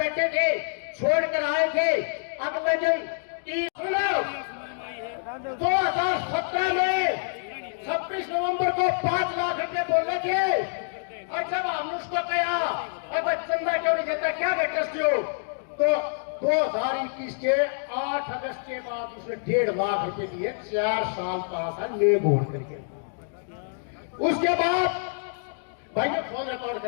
थे, छोड़कर आए थे, अगले दिन 2017 में 26 नवंबर को 5 लाख रुपए बोले थे। और जब हमने उसको कहा अब चंदा क्यों नहीं देता, क्या बेटस्ती हो, तो 2021 के 8 अगस्त के बाद उसने 1.5 लाख रुपए दिए, 4 साल 5 साल ले बोल करके। उसके बाद भाई ने फोन रिकॉर्ड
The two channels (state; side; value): silent; right; digital silence